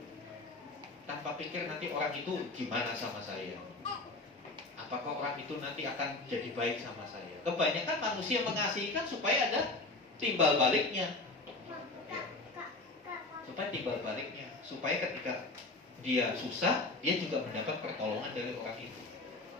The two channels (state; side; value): quieter; right; 3.1 dB